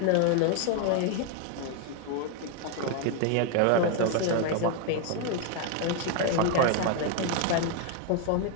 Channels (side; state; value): both; different; correlation 0.01